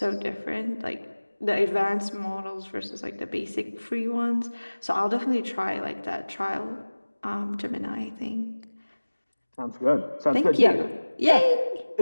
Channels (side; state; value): both; inverted; correlation -1.00